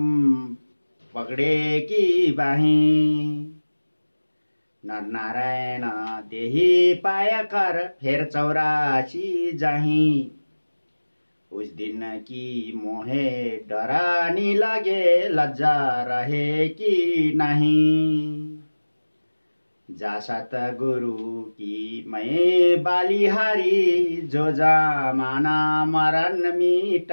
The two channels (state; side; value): inverted; both; correlation -1.00